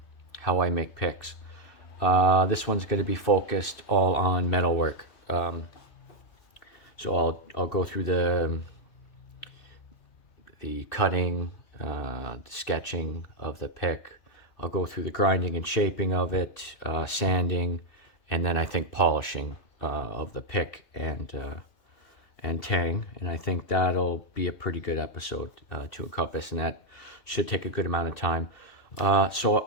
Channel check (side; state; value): right; late; 2.8 ms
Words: how I make picks. This one's going to be focused all on metalwork. So I'll go through the cutting, the sketching of the pick. I'll go through the grinding and shaping of it, sanding, and then I think polishing of the pick and tang. And I think that'll be a pretty good episode to encompass, and that should take a good amount of time. So